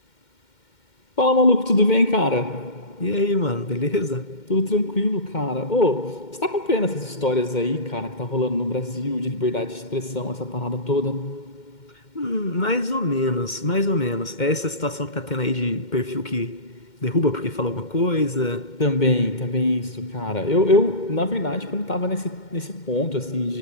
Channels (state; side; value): late; right; 2.1 ms